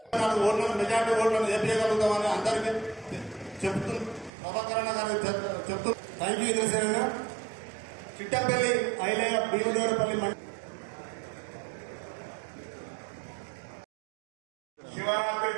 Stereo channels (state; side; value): drops out; left; at 4.3 s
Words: ఓట్లను మెజార్టీ ఓట్లను చెప్పగలుగుతామని అందరికీ చెప్తూ ప్రభాకరణ గారు చెప్తూ థ్యాంక్ యూ ఇంద్రసేన. చిట్టంపల్లి ఐలయ్య భీమదేవరపల్లి శివరాత్రి